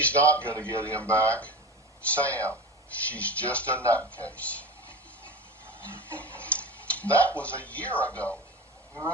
not going to get him back. Sam, she's just a nutcase. That was a year ago. We were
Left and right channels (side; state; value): both; normal; correlation 0.30